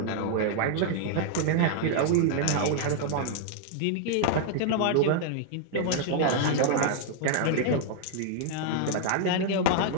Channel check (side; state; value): both; different; correlation 0.00